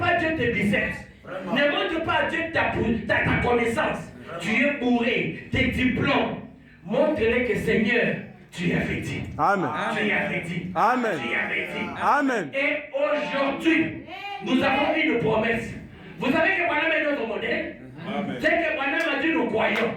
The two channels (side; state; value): both; identical; correlation 1.00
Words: Dieu tes biceps. Ne montre pas à Dieu ta connaissance. Tu es bourré, tes diplômes. Montre-le que Seigneur, tu as fait dit. Tu as fait dit. Tu as fait dit. Et aujourd'hui, nous avons une promesse. Vous savez que Branham est notre modèle. C'est que Branham a dit nous